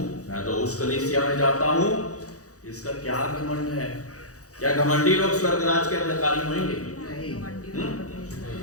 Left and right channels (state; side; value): late; right; 0.66 ms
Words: मैं तो उस कलीसिया में जाता हूं, इसका क्या घमंड है? क्या घमंडी लोग स्वर्गराज के अधिकारी होंगे? नहीं।